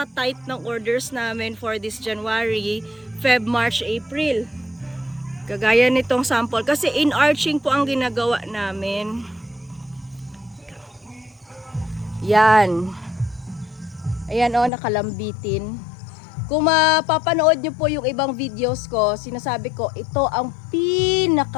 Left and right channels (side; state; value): right; drops out; at 14.7 s